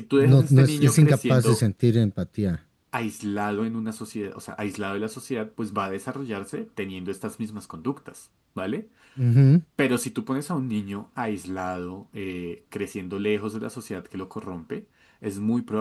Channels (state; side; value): identical; both; correlation 1.00